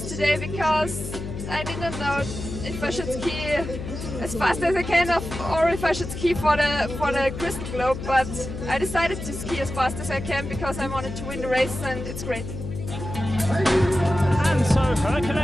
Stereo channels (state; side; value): noise; left; hum, 8 dB below the sound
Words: today because I didn't know if I should ski as fast as I can or if I should ski for the Crystal Globe, but I decided to ski as fast as I can because I wanted to win the race, and it's great. And so her